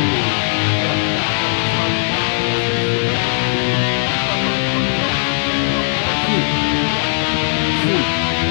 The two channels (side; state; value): right; silent; digital silence